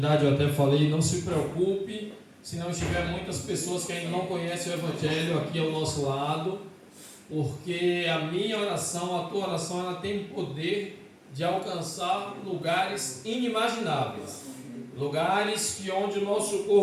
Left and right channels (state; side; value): identical; both; correlation 1.00